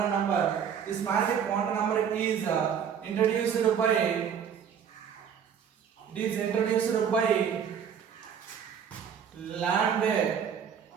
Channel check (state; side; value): quieter; left; 7.9 dB